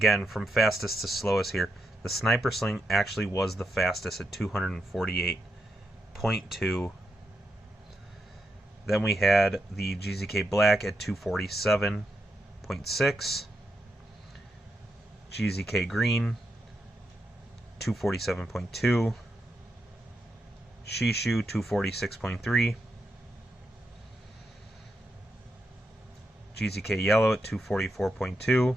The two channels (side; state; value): both; normal; correlation 0.84